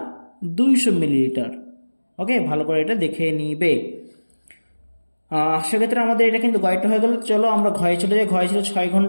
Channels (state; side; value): inverted; both; correlation -1.00